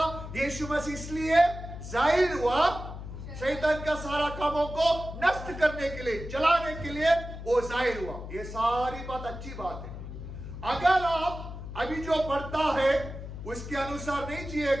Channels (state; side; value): noise; left; hum, 10 dB below the sound